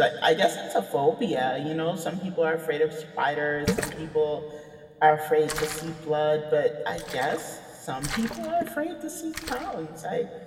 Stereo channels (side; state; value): both; identical; correlation 1.00